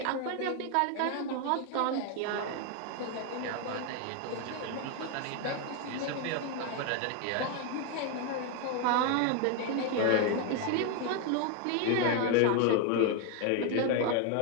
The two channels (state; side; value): different; both; correlation 0.01